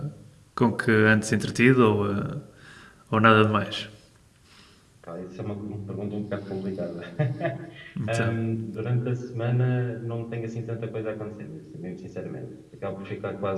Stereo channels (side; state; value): both; identical; correlation 1.00